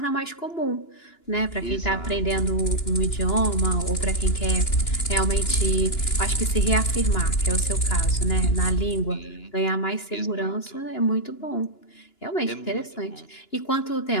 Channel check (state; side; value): late; right; 2.9 ms